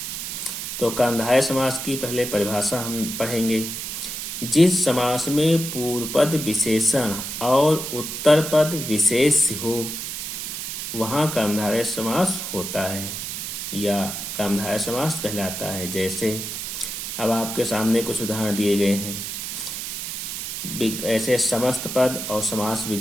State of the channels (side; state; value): right; noise; hiss, 5 dB below the sound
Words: तो कर्मधारय समास की पहले परिभाषा हम पढ़ेंगे। जिस समास में पूर्व पद विशेषण और उत्तर पद विशेष हो वहाँ कर्मधारय समास होता है या कर्मधारय समास कहलाता है। जैसे अब आपके सामने कुछ उदाहरण दिए गए हैं। ऐसे समस्त पद और समास